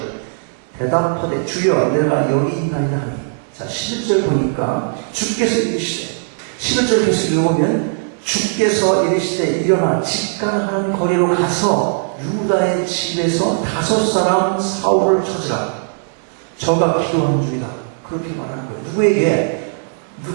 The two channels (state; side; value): silent; left; digital silence